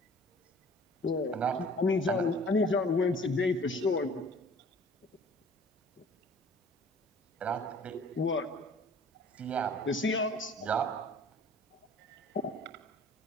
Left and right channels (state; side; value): normal; both; correlation 0.50